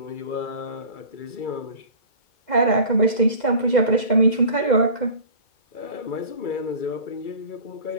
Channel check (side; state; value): right; late; 2.0 ms